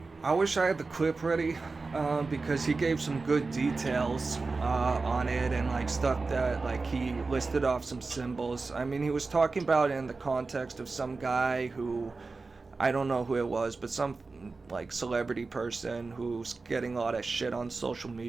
I wish I had the clip ready, because he gave some good details on it, and stuff that he listed off some symbols. He was talking about it in the context of some guy who, I don't know who it was, but some celebrity person who's getting a lot of shit on social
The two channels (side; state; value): left; quieter; 3.9 dB